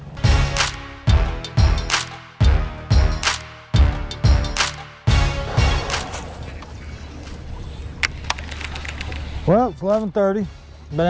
Well, it's 11:30. Been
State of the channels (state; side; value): identical; both; correlation 1.00